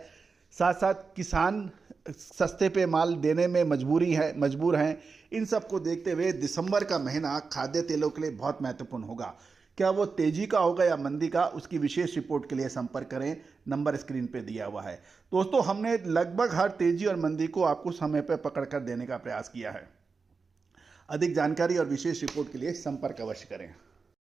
साथ साथ किसान सस्ते पे माल देने में मजबूर हैं। इन सब को देखते हुए दिसंबर का महीना खाद्य तेलों के लिए बहुत महत्वपूर्ण होगा। क्या वो तेजी का होगा या मंदी का, उसकी विशेष रिपोर्ट के लिए संपर्क करें, नंबर स्क्रीन पे दिया हुआ है। दोस्तों, हमने लगभग हर तेजी और मंदी को आपको समय पर पकड़ कर देने का प्रयास किया है। अधिक जानकारी और विशेष रिपोर्ट के लिए संपर्क अवश्य करें।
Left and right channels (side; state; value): left; quieter; 4.7 dB